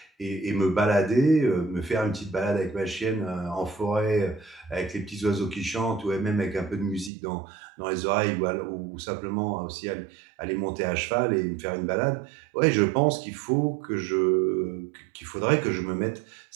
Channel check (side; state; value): left; drops out; at 7.1 s